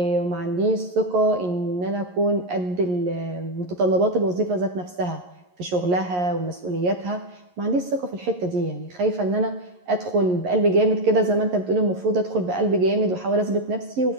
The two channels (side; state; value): left; late; 11 ms